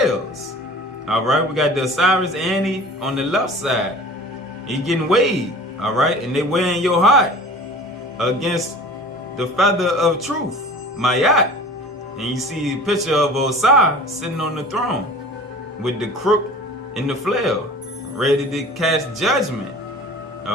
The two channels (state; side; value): normal; both; correlation 0.42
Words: All right, we got the Osiris Ani on the left side. He getting weighed. All right, and they weighing your heart against the feather of truth, Mayat. And you see a picture of Ausar sitting on the throne with the crook and the flail, ready to cast judgment.